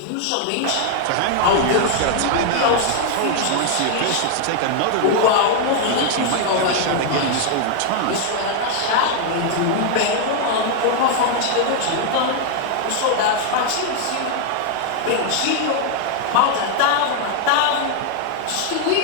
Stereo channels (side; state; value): both; different; correlation 0.00